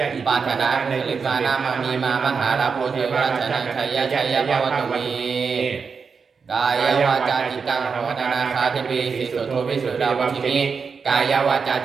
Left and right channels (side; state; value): left; quieter; 5.5 dB